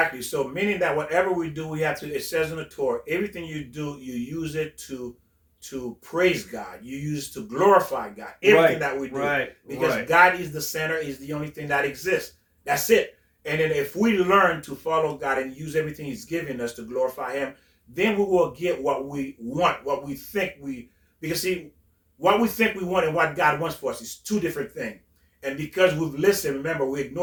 So meaning that whatever we do, we have to, it says in the Torah, everything you do, you use it to praise God. You use it to glorify God. Everything that we do. Right. Because God is the center, is the only thing that exists. That's it. And then if we learn to follow God and use everything He's given us to glorify Him, then we will get what we want, what we think because see, what we think we want and what God wants for us is two different things. And because we've listened, remember, we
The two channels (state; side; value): identical; both; correlation 1.00